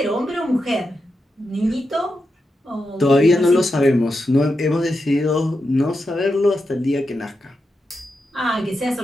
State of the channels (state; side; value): normal; both; correlation 0.87